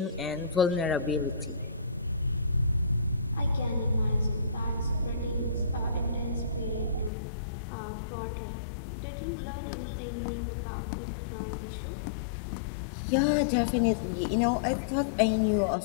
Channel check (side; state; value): right; drops out; at 7.1 s